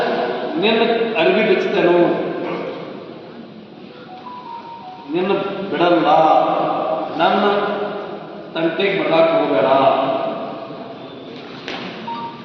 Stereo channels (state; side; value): identical; both; correlation 1.00